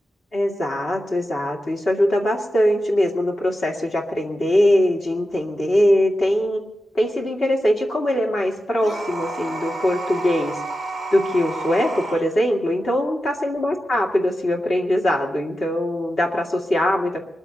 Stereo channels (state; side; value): normal; both; correlation 0.91